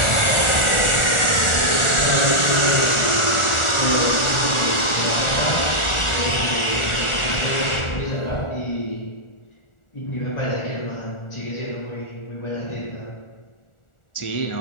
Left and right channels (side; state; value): right; late; 1.4 ms